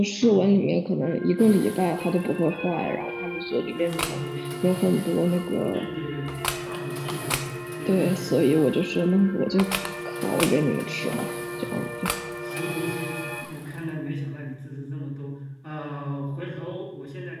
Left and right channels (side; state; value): both; identical; correlation 1.00